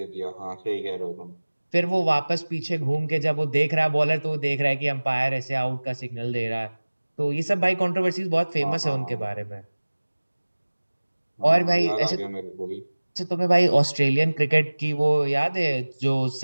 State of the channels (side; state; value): both; inverted; correlation -1.00